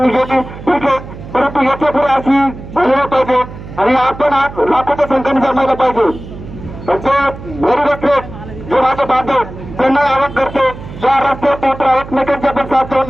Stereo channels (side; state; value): right; noise; hum, 13 dB below the sound